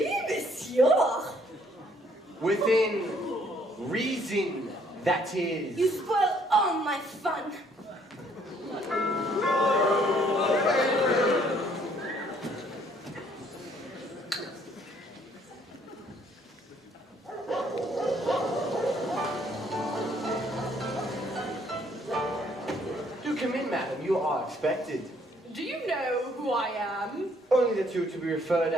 monsieur. Within reason, that is. You spoil all my fun. Do come in, madam. You are expected. Do you know who I am? Only that you are to be referred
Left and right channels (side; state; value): both; normal; correlation 0.64